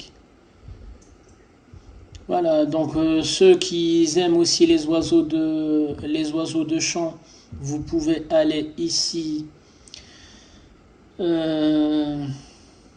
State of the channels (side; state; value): both; identical; correlation 1.00